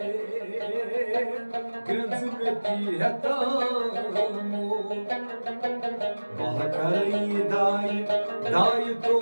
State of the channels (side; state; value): both; inverted; correlation -1.00